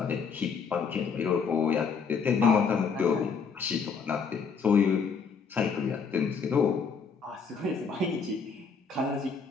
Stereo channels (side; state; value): right; quieter; 5.7 dB